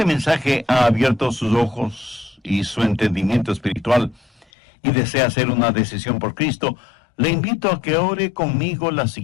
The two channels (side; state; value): right; drops out; at 4.5 s